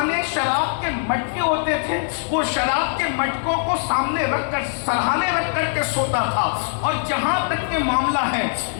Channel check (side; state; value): right; silent; digital silence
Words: शराब के मटके होते थे, वो शराब के मटकों को सामने रख कर सरहाने रख करके सोता था। और जहाँ तक के मामला है,